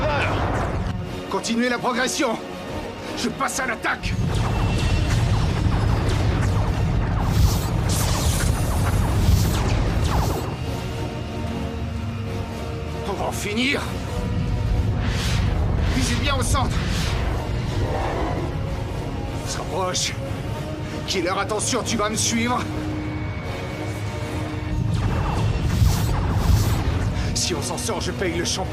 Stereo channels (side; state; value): both; identical; correlation 1.00